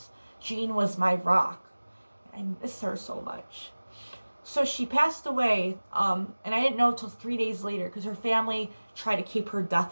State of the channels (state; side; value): inverted; both; correlation -1.00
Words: Jean was my rock. I miss her so much. So she passed away, and I didn't know until 3 days later because her family tried to keep her death